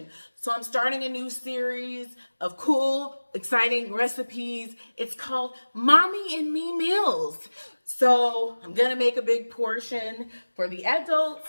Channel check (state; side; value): inverted; both; correlation -1.00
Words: So I'm starting a new series of cool, exciting recipes. It's called Mommy and Me Meals. So I'm gonna make a big portion for the adults